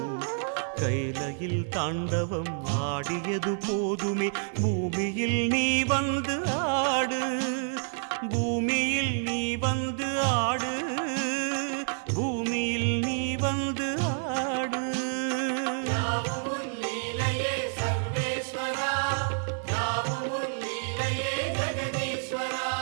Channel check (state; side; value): silent; left; digital silence